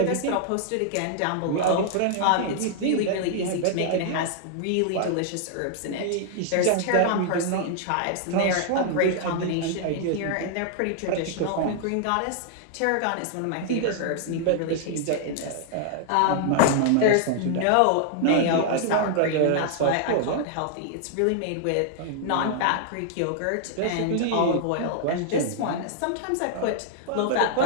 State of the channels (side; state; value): both; different; correlation -0.01